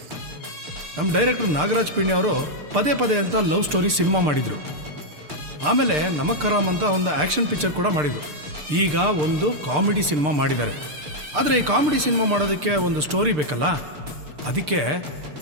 ನಮ್ಮ ಡೈರೆಕ್ಟರ್ ನಾಗರಾಜ್ ಪಿಣ್ಣಿ ಅವರು ಪದೇ ಪದೇ ಅಂತ ಲವ್ ಸ್ಟೋರಿ ಸಿನಿಮಾ ಮಾಡಿದರು. ಆಮೇಲೆ ನಮಕ್ ಹರಾಮ್ ಅಂತ ಒಂದು ಆ್ಯಕ್ಷನ್ ಪಿಕ್ಚರ್ ಕೂಡ ಮಾಡಿದರು. ಈಗ ಒಂದು ಕಾಮಿಡಿ ಸಿನಿಮಾ ಮಾಡಿದ್ದಾರೆ. ಆದರೆ ಈ ಕಾಮಿಡಿ ಸಿನಿಮಾ ಮಾಡೋದಕ್ಕೆ ಒಂದು ಸ್ಟೋರಿ ಬೇಕಲ್ಲ, ಅದಕ್ಕೆ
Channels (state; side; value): late; left; 6.7 ms